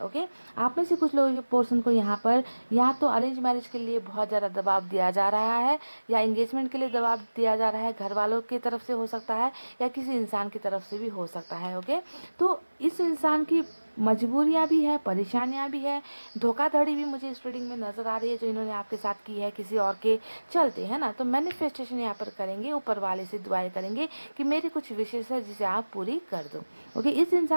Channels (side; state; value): both; inverted; correlation -1.00